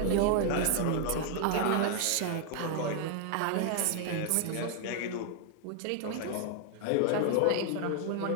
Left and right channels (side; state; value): both; different; correlation 0.00